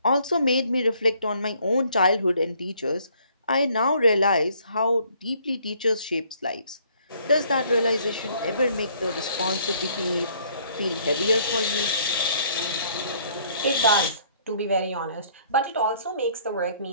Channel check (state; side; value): inverted; both; correlation -0.62